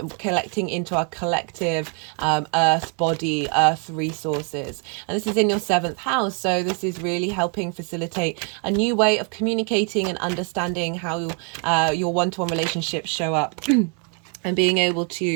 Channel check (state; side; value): quieter; left; 39.1 dB